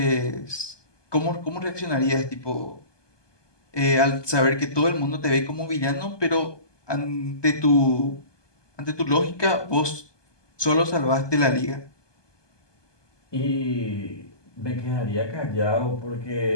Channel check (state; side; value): late; right; 1.2 ms